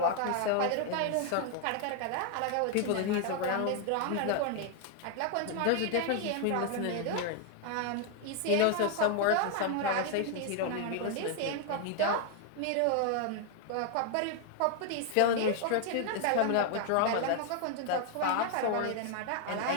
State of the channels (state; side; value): different; both; correlation 0.00